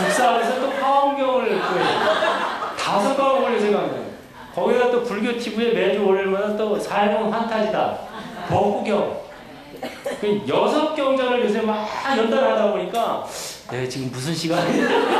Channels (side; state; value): both; identical; correlation 1.00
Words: 또 화엄경을 구해요. 5과목을 요새 강좌. 거기다 또 불교 TV에 매주 월요일마다 또 삶은 환타지다. 법구경. 6경전을 요새 막 연달하다 보니까 지금 무슨